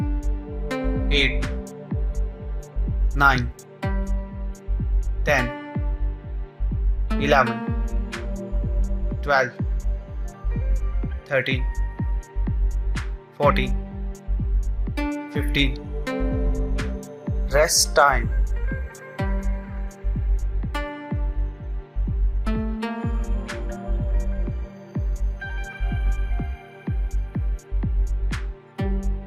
8, 9, 10, 11, 12, 13, 14, 15. Rest time.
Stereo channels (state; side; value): identical; both; correlation 1.00